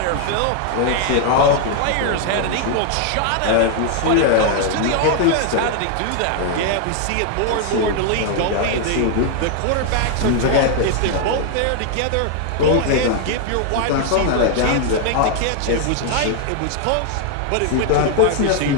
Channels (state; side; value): different; both; correlation 0.00